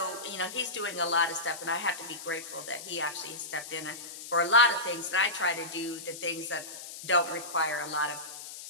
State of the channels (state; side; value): noise; left; hiss, 11 dB below the sound